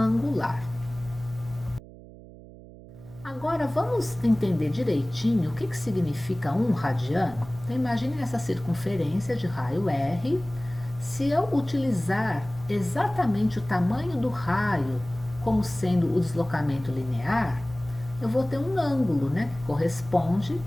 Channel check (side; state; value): right; noise; hum, 18 dB below the sound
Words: Agora vamos entender direitinho o que significa 1 radiano. Então imagine essa circunferência de raio R. Se eu utilizar exatamente o tamanho do raio como sendo o deslocamento linear, eu vou ter um ângulo, né, que corresponde